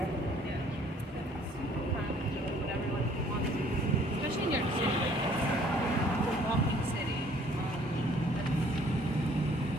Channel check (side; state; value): both; normal; correlation 0.58